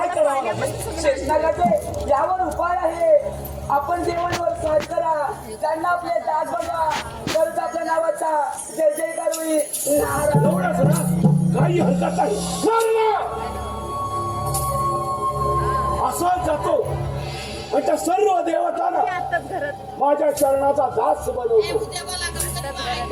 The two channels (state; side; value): identical; both; correlation 1.00